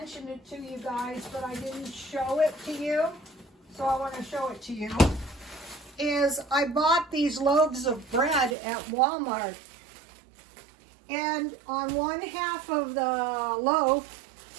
it to you guys, but I didn't show it to you, so I want to show it to you, is I bought these loaves of bread at Walmart. And on one half of the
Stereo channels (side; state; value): left; drops out; at 8.6 s